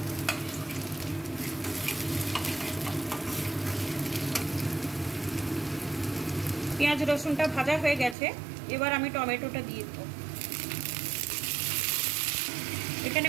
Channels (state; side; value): drops out; left; at 8.2 s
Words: পেঁয়াজ রসুনটা ভাজা হয়ে গেছে, এবার আমি টমেটোটা দিয়ে দেবো। এখানে